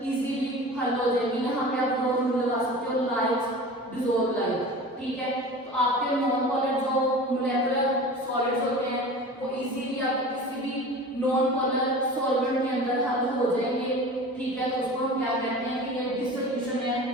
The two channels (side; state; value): both; normal; correlation 0.36